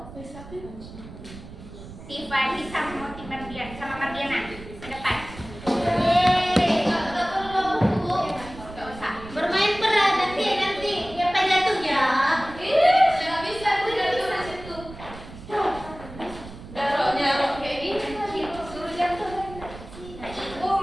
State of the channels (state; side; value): noise; right; rumble, 15 dB below the sound